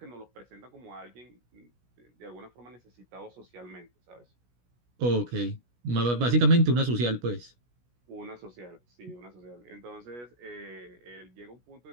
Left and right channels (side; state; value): left; late; 17 ms